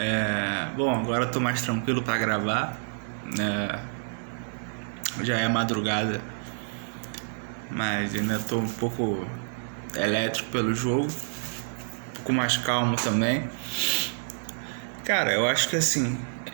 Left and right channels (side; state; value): left; silent; digital silence